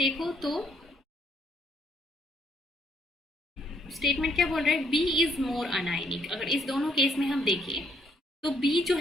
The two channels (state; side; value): normal; both; correlation 0.69